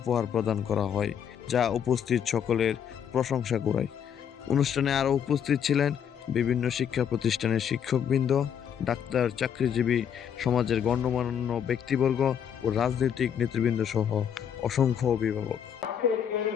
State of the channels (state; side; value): quieter; right; 8.4 dB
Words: প্রদান করা হয়, যা উপস্থিত সকলের প্রশংসা কুড়ায়। অনুষ্ঠানে আরও উপস্থিত ছিলেন বিভিন্ন শিক্ষা প্রতিষ্ঠানের শিক্ষকবৃন্দ, ডাক্তার, চাকরিজীবী, সমাজের গণ্যমান্য ব্যক্তিবর্গ ও রাজনৈতিক নেতৃবৃন্দ সহ অসংখ্য অভিভাবক।